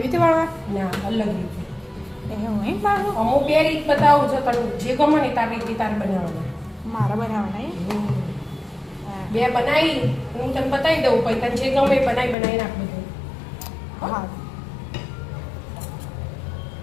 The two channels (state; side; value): drops out; right; at 12.4 s